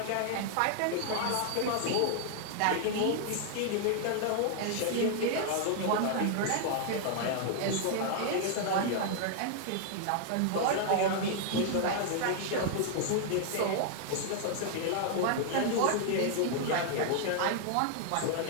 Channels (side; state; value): both; different; correlation -0.01